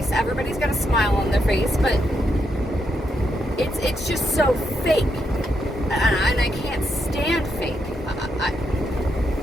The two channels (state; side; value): normal; both; correlation 0.80